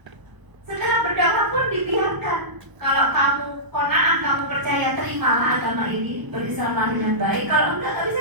Setelah berdakwah pun dibiarkan. Kalau kamu qanaah, kamu percaya, terimalah agama ini, berislamlah dengan baik. Kalau enggak bisa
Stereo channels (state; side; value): late; left; 1.0 ms